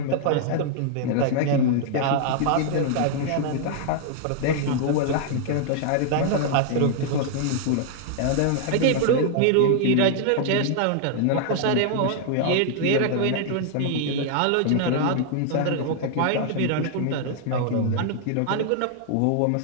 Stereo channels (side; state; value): both; different; correlation -0.01